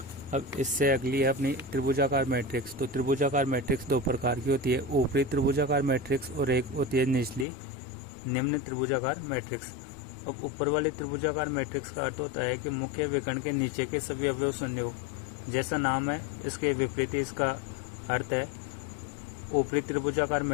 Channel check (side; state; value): right; drops out; at 7.5 s